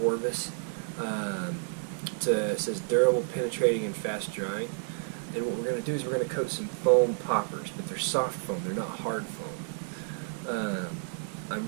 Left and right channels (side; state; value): left; silent; digital silence